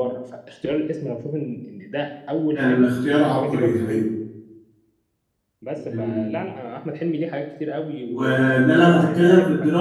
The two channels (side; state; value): both; identical; correlation 1.00